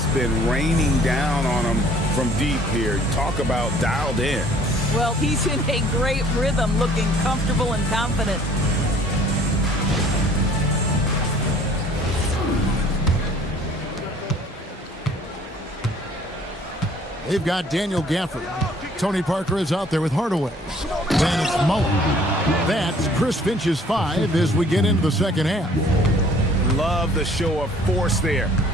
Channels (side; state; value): both; normal; correlation 0.56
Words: been raining down on him from deep here. Talk about dialed in. Well, he's in a great rhythm, looking comfortable and confident. They've got Daniel Gafford. Tony Parker is out there with Hardaway. Then it's Mullen. That's Chris Finch's 5 as we get into the second half. Love the show of force there